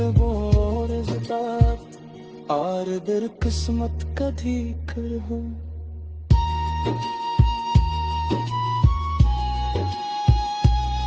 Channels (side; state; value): both; identical; correlation 1.00